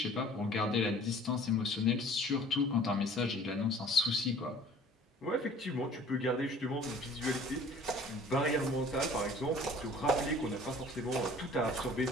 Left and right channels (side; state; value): both; normal; correlation 0.49